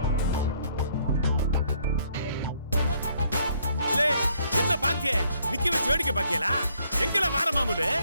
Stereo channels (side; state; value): both; inverted; correlation -0.67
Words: என்ன பாக்கிய நிக்க வச்சு வேடிக்கை பாக்கியலா எங்கல வார மாமூலு